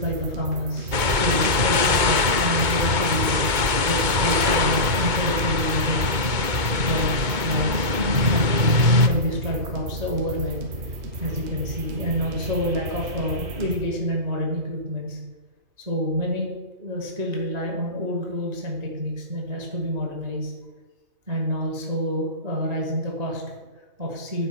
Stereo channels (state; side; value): late; left; 2.2 ms